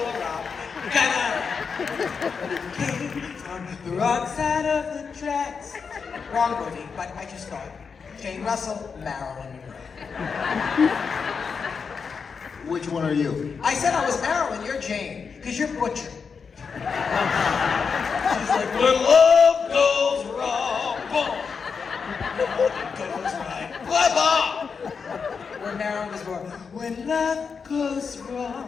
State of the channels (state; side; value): quieter; right; 5.7 dB